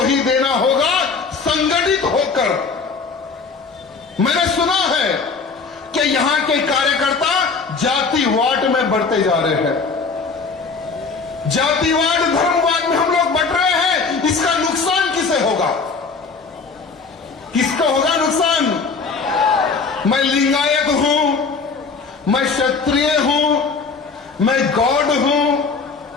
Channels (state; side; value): quieter; right; 4.8 dB